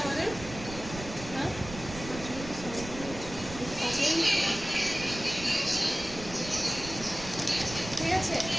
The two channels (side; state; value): right; noise; rumble, 11 dB below the sound